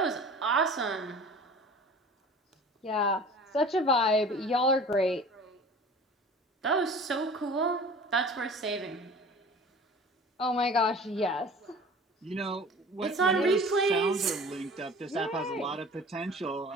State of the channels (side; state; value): both; normal; correlation 0.42